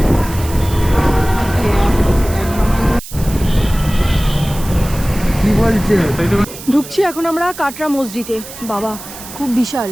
কি বলছে? ঢুকছি এখন আমরা কাটরা মসজিদে। বাবা, খুব বিশাল,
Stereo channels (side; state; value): right; noise; hiss, 14 dB below the sound